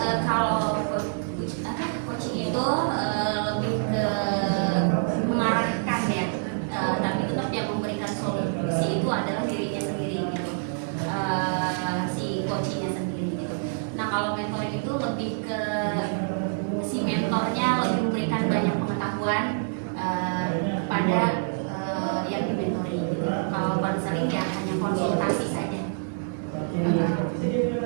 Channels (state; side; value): silent; left; digital silence